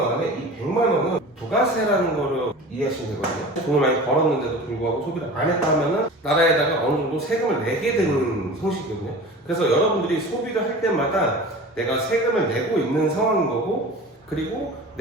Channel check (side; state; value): both; normal; correlation 0.37